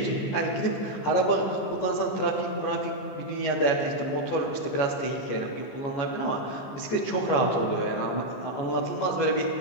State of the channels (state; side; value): late; right; 14 ms